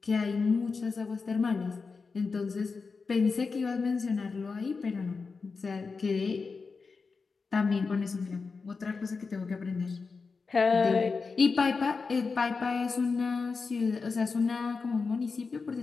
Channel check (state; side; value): quieter; right; 4.6 dB